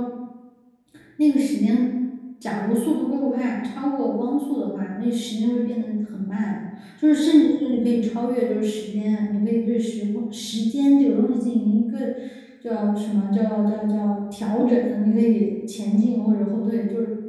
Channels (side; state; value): both; identical; correlation 1.00